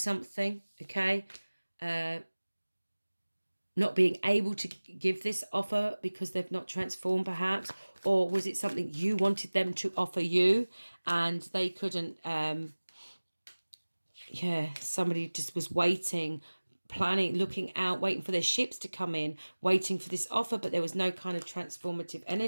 okay? Not being able to give this offer because they've not transformed, perhaps. Or was it something you wanted them to offer you and they couldn't? Yeah, somebody just was waiting, planning, looking out, waiting for their ships to come in, waiting for this offer, but there was no kind of transformative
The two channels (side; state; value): both; inverted; correlation -1.00